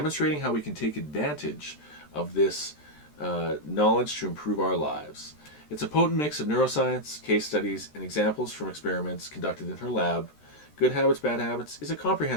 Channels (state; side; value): late; right; 13 ms